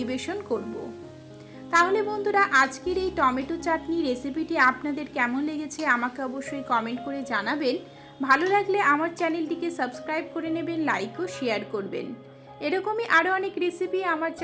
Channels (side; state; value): both; identical; correlation 1.00